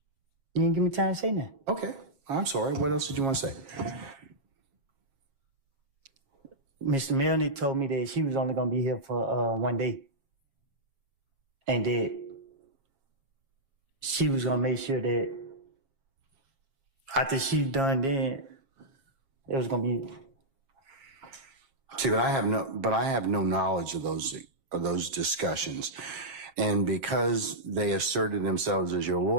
You didn't give me time to say that. Okay, I'm sorry. What else did you want to say? Mr. Melnick told me that she was only going to be here for 1 day. And that she was going to make sure that after she's done, then it was going to be. See, but I have no knowledge of those discussions. And because they asserted themselves as your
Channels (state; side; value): late; left; 7.4 ms